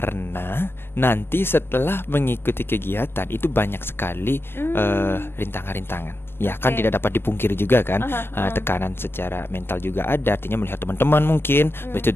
nanti setelah mengikuti kegiatan itu banyak sekali rintangan-rintangan. Ya kan tidak dapat dipungkiri juga kan, tekanan secara mental juga ada. Artinya melihat teman-teman mungkin begitu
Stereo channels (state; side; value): late; right; 0.11 ms